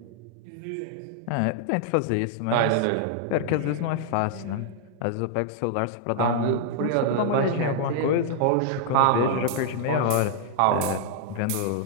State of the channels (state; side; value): different; both; correlation -0.01